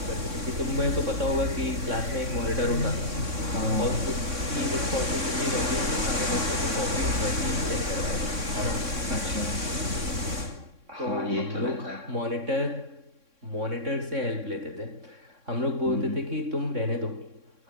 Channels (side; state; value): left; late; 3.6 ms